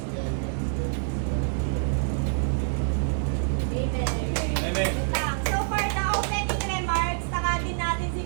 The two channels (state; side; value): silent; left; digital silence